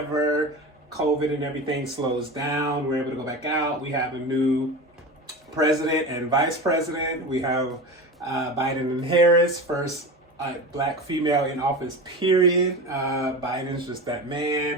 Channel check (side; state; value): both; normal; correlation 0.28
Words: COVID and everything slows down. We're able to go back out. We have a new president and vice president. We have Biden and Harris, first black female in office, period. Biden's just that